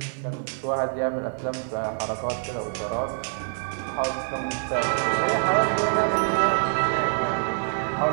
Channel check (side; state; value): left; silent; 61 dB below the other